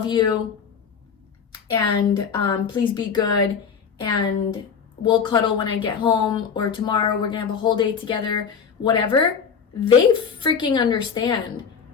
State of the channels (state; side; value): quieter; right; 6.5 dB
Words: you, and please be good, and we'll cuddle when I get home, or tomorrow we're gonna have a whole day together, whatever, they freaking understand.